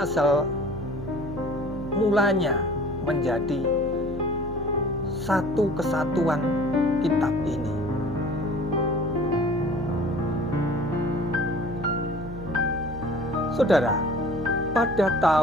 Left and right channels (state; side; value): noise; right; hum, 10 dB below the sound